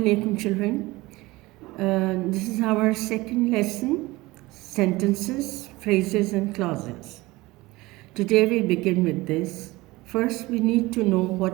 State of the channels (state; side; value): quieter; left; 20.5 dB